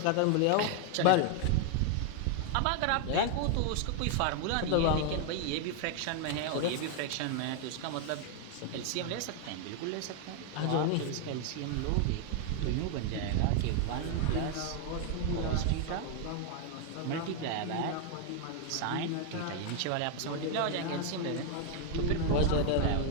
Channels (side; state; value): both; different; correlation 0.00